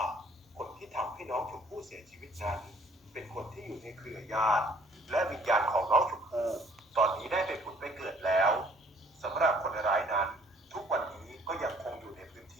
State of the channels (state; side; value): normal; both; correlation 0.59